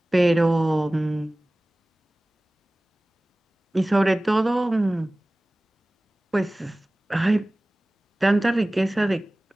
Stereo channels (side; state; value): both; normal; correlation 0.98